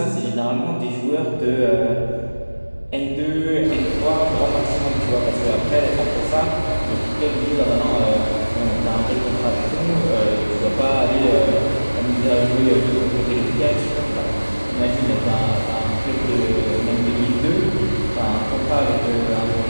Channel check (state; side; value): inverted; both; correlation -1.00